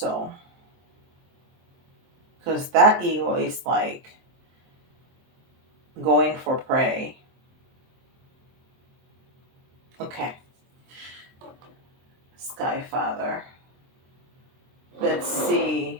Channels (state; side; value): late; left; 23 ms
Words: because that eagle is like going for prey. Okay. Sky Father. Let's see